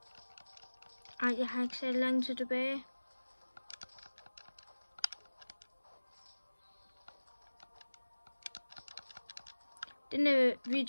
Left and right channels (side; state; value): both; inverted; correlation -1.00